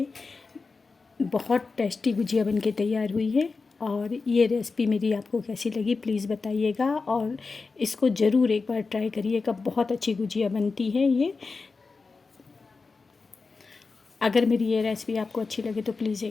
बहुत टेस्टी गुजिया बन के तैयार हुई है। और ये रेसिपी मेरी आपको कैसी लगी प्लीज़ बताइएगा और इसको ज़रूर एक बार ट्राई करिएगा। बहुत अच्छी गुजिया बनती है ये। अगर मेरी ये रेसिपी आपको अच्छी लगे तो प्लीज़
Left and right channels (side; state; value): right; quieter; 4.3 dB